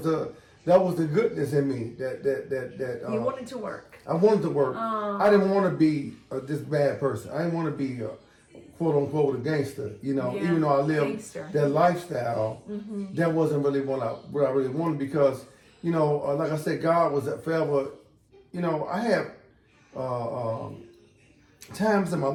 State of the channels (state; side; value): identical; both; correlation 1.00